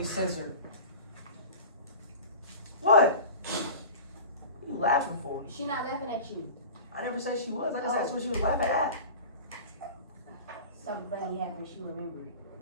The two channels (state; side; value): inverted; both; correlation -0.35